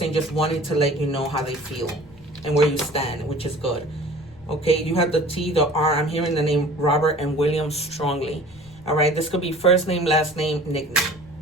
just wanting to let you know how they feel and where you stand, which is good. Okay, you have the T, the R. I'm hearing the name Robert and William strongly. All right, this could be first name, last name, nickname.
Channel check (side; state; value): left; noise; rumble, 25 dB below the sound